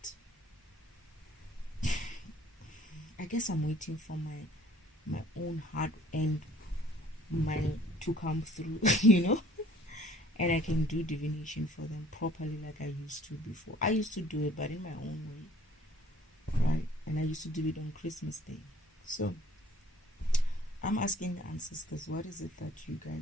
I guess I'm waiting for my own heart and to come through, and I can do divination for them properly like I used to before. I used to do it, but in my own way, right? And I used to do it on Christmas Day. So I'm asking the ancestors, what is it that you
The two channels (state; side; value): normal; both; correlation 0.55